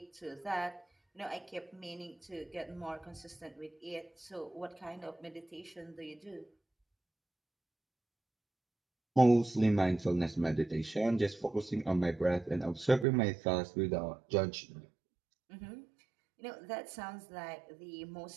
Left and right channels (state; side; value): drops out; left; at 13.1 s